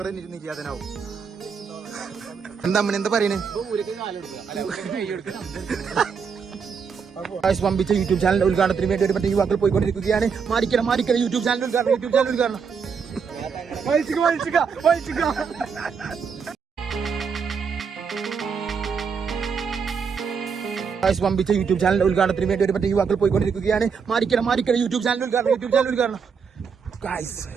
നിൽക്കാതനാവും. എന്താ എന്താ പറയണേ? പമ്പിച്ച യൂട്യൂബ് ചാനൽ ഉദ്ഘാടനത്തിന് വേണ്ടി ഒരു മറ്റേ യുവാക്കൾ പോയിക്കൊണ്ടിരിക്കുകയാണ്. മാറിക്കണം യൂട്യൂബ് ചാനൽ ഉദ്ഘാടനം. പമ്പിച്ച യൂട്യൂബ് ചാനൽ ഉദ്ഘാടനത്തിന് വേണ്ടി ഒരു മറ്റേ യുവാക്കൾ പോയിക്കൊണ്ടിരിക്കുകയാണ്. മാറിക്കണം യൂട്യൂബ് ചാനൽ ഉദ്ഘാടനം.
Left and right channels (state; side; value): quieter; left; 6.1 dB